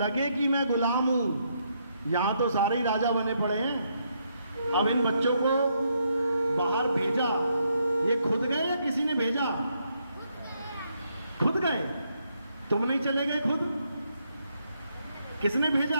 कि मैं गुलाम हूं। यहां तो सारे ही राजा बने पड़े हैं। अब इन बच्चों को बाहर भेजा, ये खुद गए या किसी ने भेजा? खुद गए। तुम नहीं चले गए खुद? किसने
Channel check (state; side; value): inverted; both; correlation -0.76